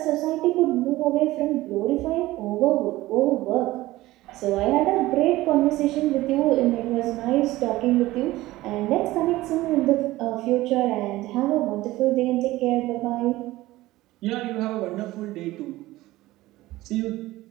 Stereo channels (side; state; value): left; quieter; 17.6 dB